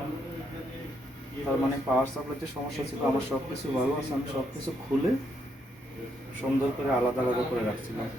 তার মানে পাওয়ার সাপ্লাইতে সমস্যা ছিল। আমার সব কিছু ভালো আছে, আমি সব কিছু খুলে সুন্দর করে আলাদা আলাদা করে রাখছিলাম।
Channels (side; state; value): both; normal; correlation 0.76